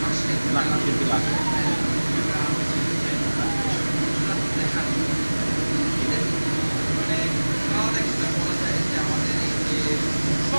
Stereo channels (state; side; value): inverted; both; correlation -1.00